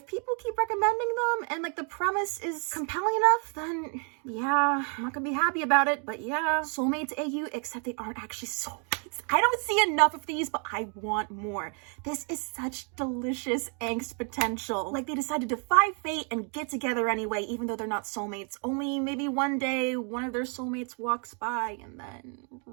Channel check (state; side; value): quieter; left; 39.8 dB